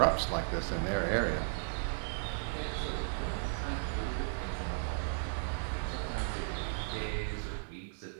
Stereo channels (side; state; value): left; silent; 54 dB below the other